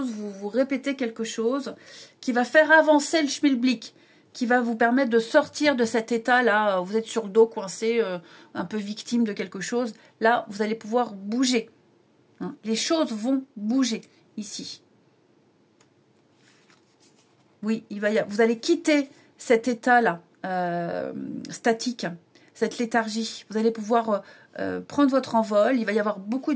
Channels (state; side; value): identical; both; correlation 1.00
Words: vous répéter quelque chose qui va faire avancer le schmilblick, qui va vous permettre de sortir de cet état-là. Vous êtes sur le dos, coincé, un peu victime de quelque chose. Là, vous allez pouvoir bouger. Hein, les choses vont bouger ici. Oui, vous allez quitter cet état-là, statique, cette léthargie. Vous allez pouvoir prendre votre envol. Il va y avoir beaucoup